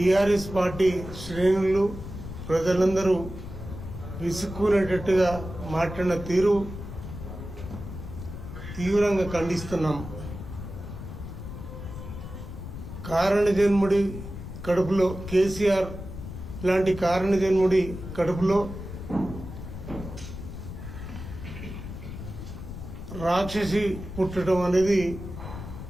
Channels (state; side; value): noise; left; rumble, 10 dB below the sound